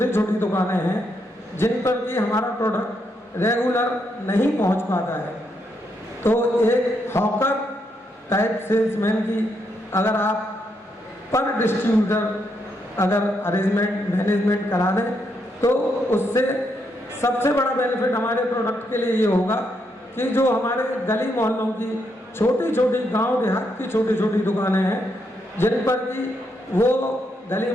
छोटी दुकानें हैं जिन पर कि हमारा प्रोडक्ट रेगुलर नहीं पहुंच पाता है, तो एक हॉकर टाइप सेल्समैन की अगर आप पर डिस्ट्रीब्यूटर अगर अरेंजमेंट मैनेजमेंट करा दें तो उससे सबसे बड़ा बेनिफिट हमारे प्रोडक्ट के लिए ये होगा कि जो हमारे गली मोहल्लों की छोटी छोटी गांव देहात की छोटी छोटी दुकानें हैं जिन पर कि वो गली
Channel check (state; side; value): normal; both; correlation 0.78